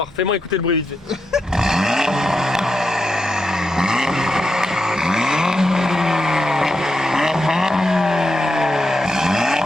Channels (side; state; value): both; normal; correlation 0.85